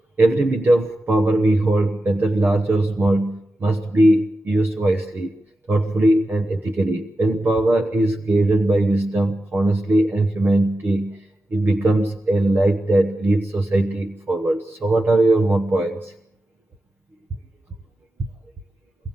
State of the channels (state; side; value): normal; both; correlation 0.91